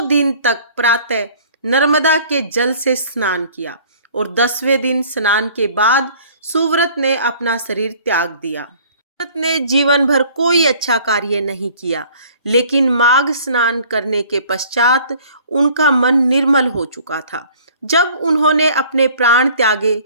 दिन तक प्रातः नर्मदा के जल से स्नान किया और 10वें दिन स्नान के बाद सुव्रत ने अपना शरीर त्याग दिया। सुव्रत ने जीवन भर कोई अच्छा कार्य नहीं किया, लेकिन माघ स्नान करने के पश्चात उनका मन निर्मल हो चुका था। जब उन्होंने अपने प्राण त्यागे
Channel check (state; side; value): inverted; both; correlation -0.52